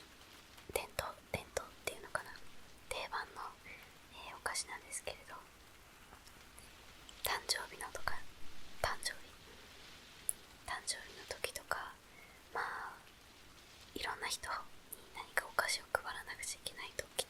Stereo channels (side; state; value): both; identical; correlation 1.00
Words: 伝統っていうのかな、定番の、お菓子なんですけれど、誕生日の時とか、まあいろんな人に何かお菓子を配らなくちゃいけない時